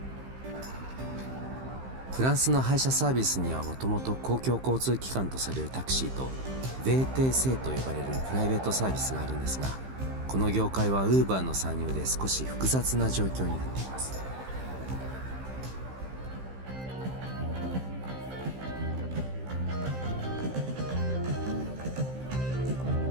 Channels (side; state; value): left; late; 15 ms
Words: フランスの配車サービスにはもともと公共交通機関とされるタクシーと VTC と呼ばれるプライベートサービスがあるんですが、この業界は Uber の参入で少し複雑な状況になっています。